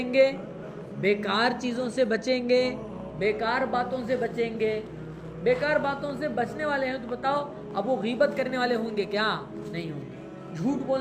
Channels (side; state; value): both; identical; correlation 1.00